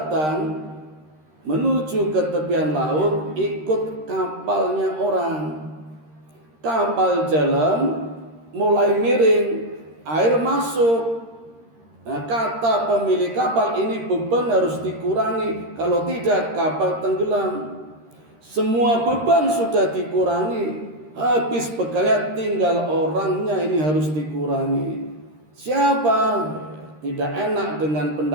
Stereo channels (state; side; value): late; left; 13 ms